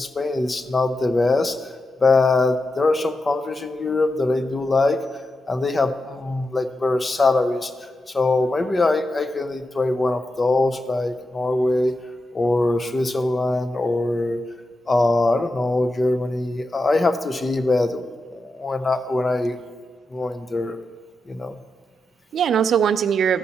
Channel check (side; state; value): both; normal; correlation 0.88